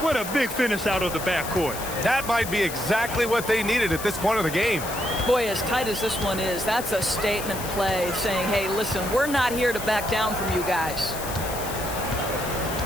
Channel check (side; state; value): left; noise; hiss, 9 dB below the sound